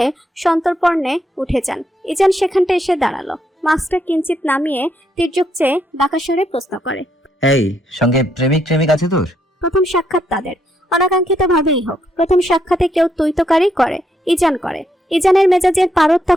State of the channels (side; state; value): both; normal; correlation 0.76